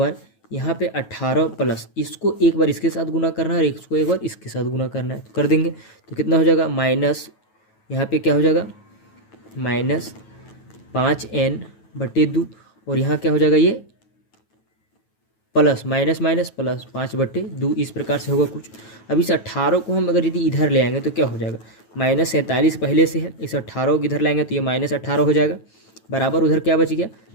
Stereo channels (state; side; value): late; right; 9.2 ms